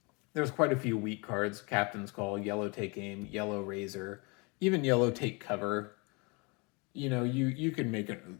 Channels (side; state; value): right; quieter; 29.6 dB